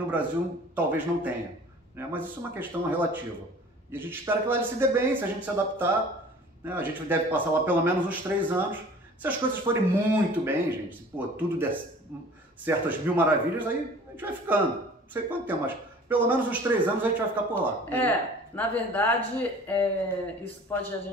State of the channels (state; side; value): normal; both; correlation 0.47